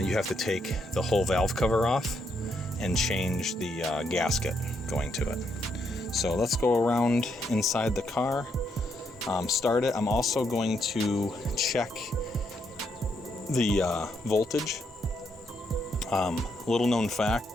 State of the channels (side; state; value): both; normal; correlation 0.76